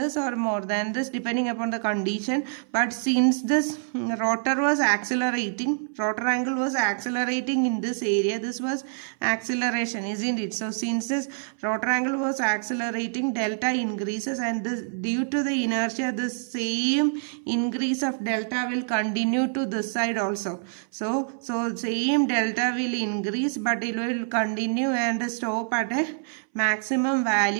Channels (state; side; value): silent; left; 61 dB below the other